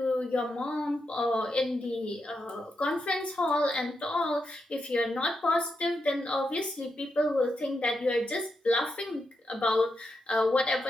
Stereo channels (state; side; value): normal; both; correlation 0.84